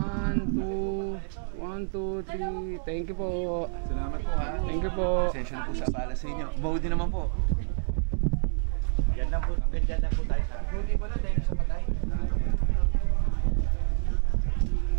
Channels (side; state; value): left; silent; digital silence